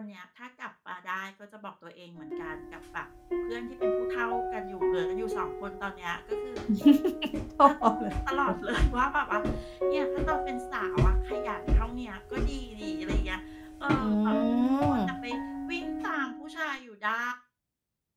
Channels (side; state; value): both; identical; correlation 1.00